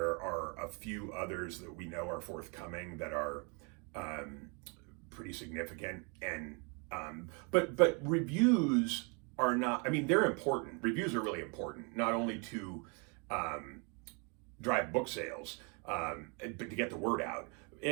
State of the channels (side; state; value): left; quieter; 34.8 dB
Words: are a few others that we know are forthcoming that are pretty significant. And but reviews are not, they're important. Reviews are really important, not only to drive book sales, but to get the word out.